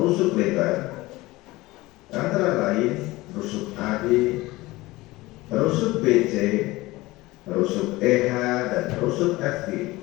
rusuk lebar antara lain rusuk AD, rusuk BC, rusuk EH, dan rusuk FG.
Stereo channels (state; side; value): quieter; right; 19.9 dB